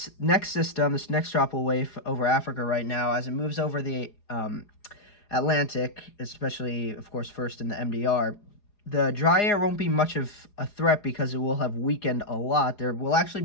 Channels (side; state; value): right; late; 4.8 ms